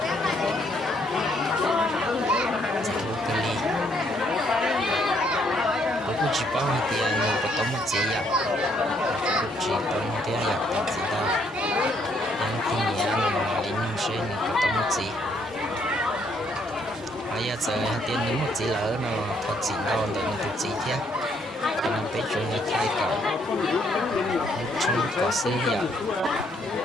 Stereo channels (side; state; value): both; normal; correlation 0.70